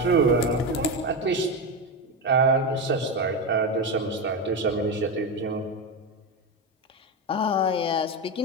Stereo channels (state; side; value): normal; both; correlation 0.14